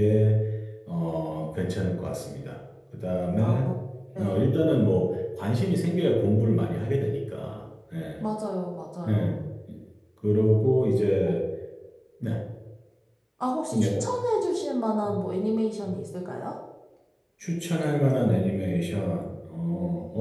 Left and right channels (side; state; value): both; identical; correlation 1.00